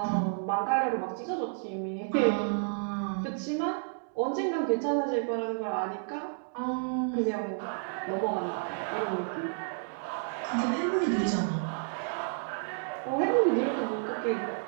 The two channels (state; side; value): silent; left; digital silence